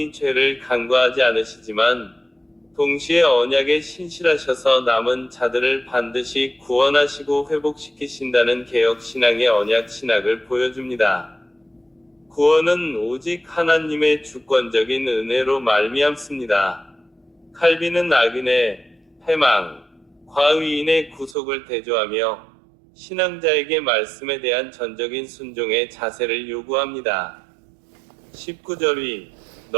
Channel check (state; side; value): drops out; left; at 21.4 s